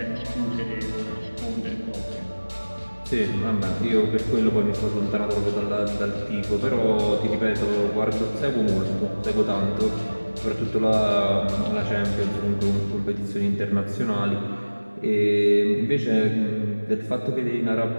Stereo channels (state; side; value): inverted; both; correlation -1.00